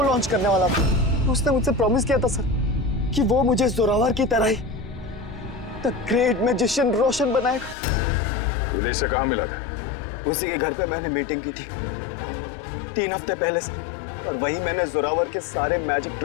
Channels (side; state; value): right; drops out; at 7.8 s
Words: लॉन्च करने वाला था। उसने मुझसे प्रॉमिस किया था सर कि वो मुझे जोरावर की तरह ही द ग्रेट मैजिशियन रोशन बनाएगा। इलेश से कहाँ मिला था? उसी के घर पे मैंने मीटिंग की थी 3 हफ्ते पहले सर, और वहीं मैंने जोरावर के सारे मैजिक